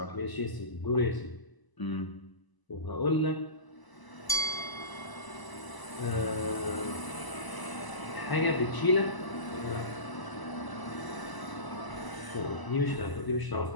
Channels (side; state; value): right; late; 1.0 ms